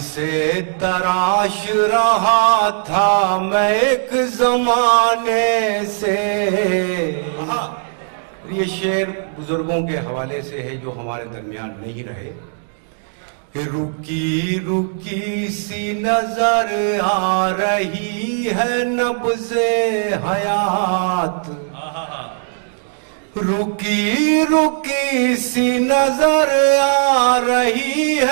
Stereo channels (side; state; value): left; silent; digital silence